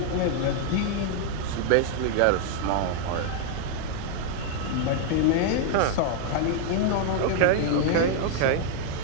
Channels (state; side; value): different; both; correlation 0.00